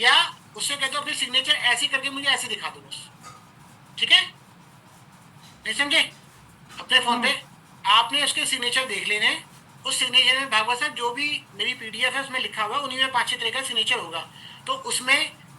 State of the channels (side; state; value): both; identical; correlation 1.00